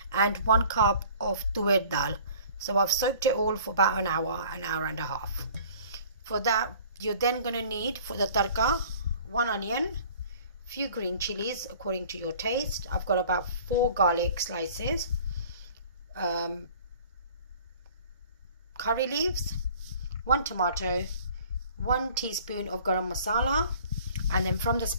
and 1 cup of tuer dal. So I've soaked it all for about an hour and a half. For that, you're then going to need for the tarka 1 onion, few green chilies according to your taste. I've got about 4 garlic slices. Curry leaves, 1 tomato, 1 teaspoon of garam masala, and then from the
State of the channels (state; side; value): inverted; both; correlation -0.49